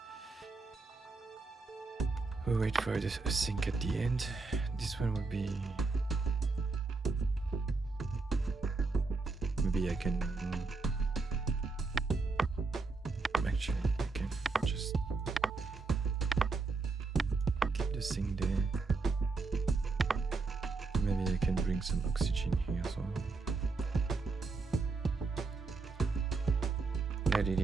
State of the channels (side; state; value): left; quieter; 4.0 dB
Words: We'll wait for this sync at the end. This one will be Maybe I can actually I can just keep this thing there. Maybe I can bring some oxygen here as well. Add it